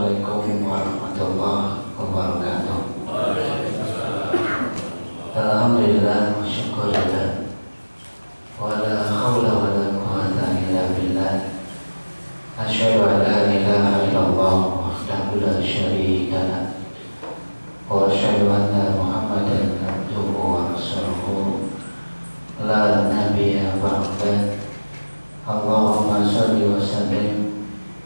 warahmatullahi wabarakatuh. Alhamdulillah wa syukurillah wa la hawla wa la quwwata illa billah. Asyhadu an la ilaha illallah wahdahu la syarika lah wa asyhadu anna Muhammadan abduhu wa rasuluhu la nabiyya ba'dah. Allahumma shalli wa sallim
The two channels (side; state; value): both; inverted; correlation -1.00